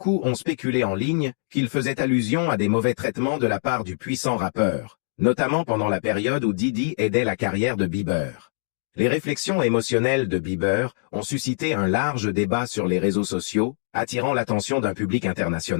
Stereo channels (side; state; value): right; silent; digital silence